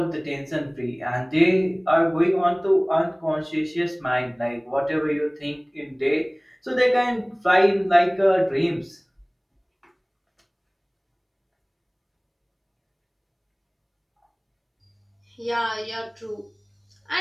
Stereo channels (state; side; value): identical; both; correlation 1.00